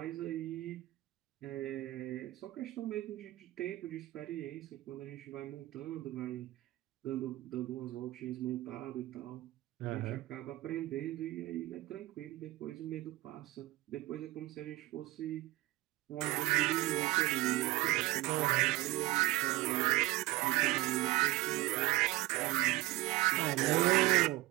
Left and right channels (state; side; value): quieter; left; 18.4 dB